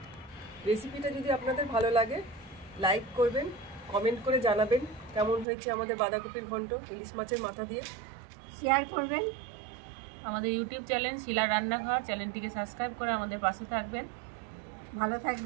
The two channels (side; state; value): left; drops out; at 5.5 s